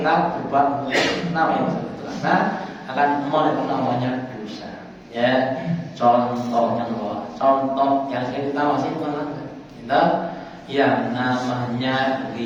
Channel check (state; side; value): identical; both; correlation 1.00